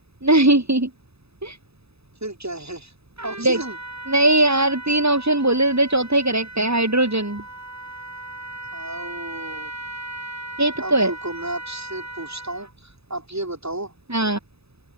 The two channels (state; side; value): late; left; 0.79 ms